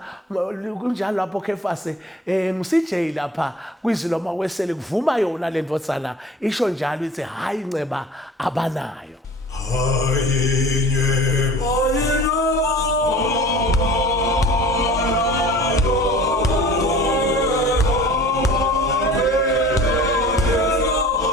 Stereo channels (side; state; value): both; normal; correlation 0.44